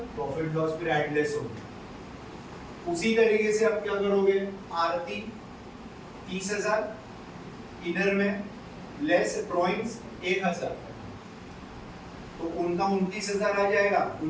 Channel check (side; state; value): both; identical; correlation 1.00